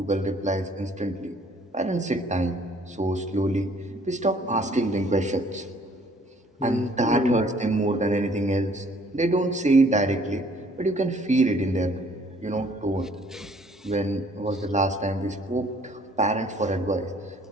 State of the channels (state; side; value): normal; both; correlation 0.59